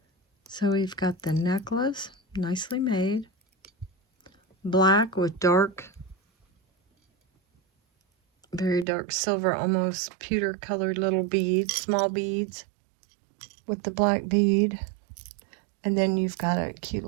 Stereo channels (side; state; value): left; drops out; at 8.8 s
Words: So we've got the necklace, nicely made. Black with dark, very dark silver, almost pewter colored little beads, small beads with the black bead. And then you've got a cute